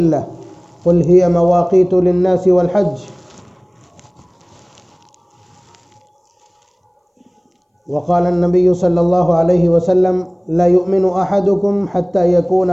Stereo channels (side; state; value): both; identical; correlation 1.00